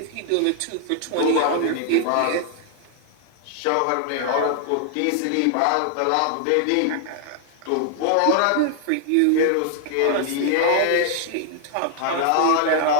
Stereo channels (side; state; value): both; different; correlation 0.00